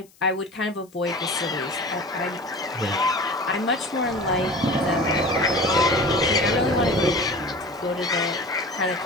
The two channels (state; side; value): noise; left; hiss, 29 dB below the sound